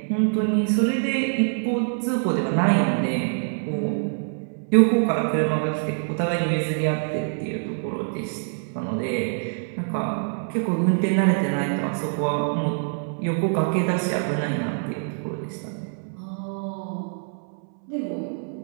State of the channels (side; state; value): left; silent; 62 dB below the other